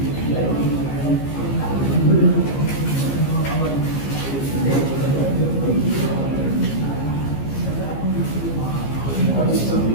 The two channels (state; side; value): late; right; 15 ms